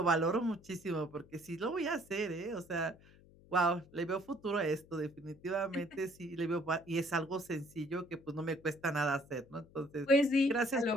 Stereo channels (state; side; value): noise; left; hum, 25 dB below the sound